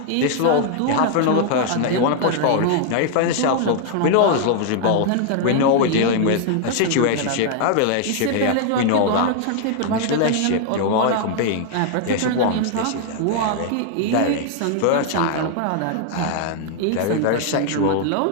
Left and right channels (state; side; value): different; both; correlation 0.00